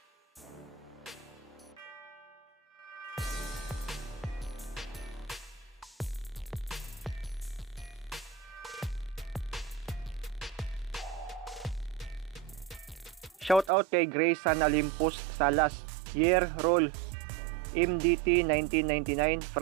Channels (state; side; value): drops out; left; at 13.7 s